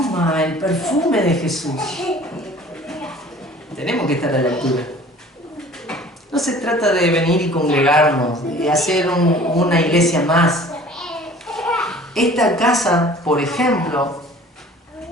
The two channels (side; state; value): both; normal; correlation 0.48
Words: el perfume de Jesús, tenemos que estar a la altura. No se trata de venir y congregarnos, de hacer una iglesia más. Esta casa, por ejemplo,